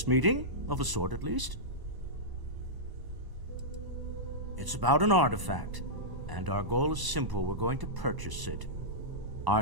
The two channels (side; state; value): left; late; 1.0 ms